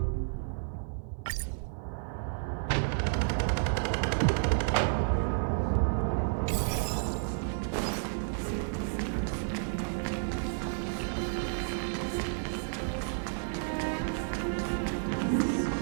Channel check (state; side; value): silent; left; digital silence